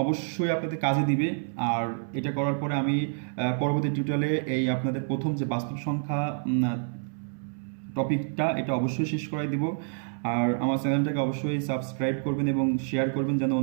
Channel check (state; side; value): silent; left; 59 dB below the other